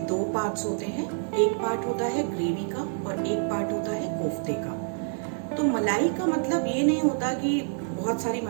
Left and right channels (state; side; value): silent; left; digital silence